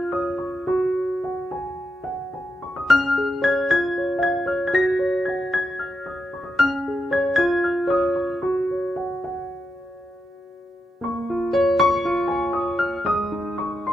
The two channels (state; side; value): normal; both; correlation 0.86